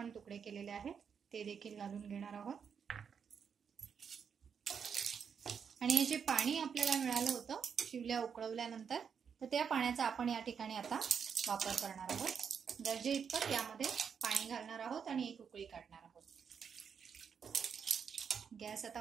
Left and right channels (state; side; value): quieter; left; 6.9 dB